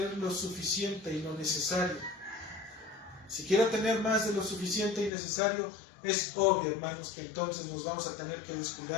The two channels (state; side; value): drops out; right; at 5.1 s